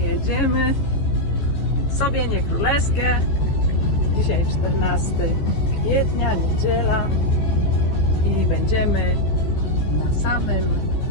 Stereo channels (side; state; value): right; late; 14 ms